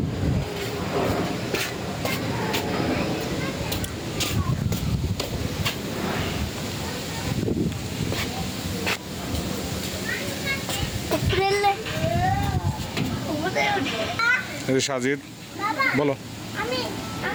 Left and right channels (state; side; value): identical; both; correlation 1.00